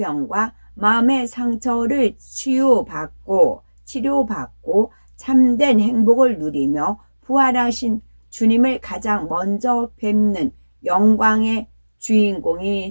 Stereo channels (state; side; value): inverted; both; correlation -1.00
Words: 마음의 상처를 치료받고 참된 행복을 누리며 부활하신 주님을 가장 먼저 뵙는 영광의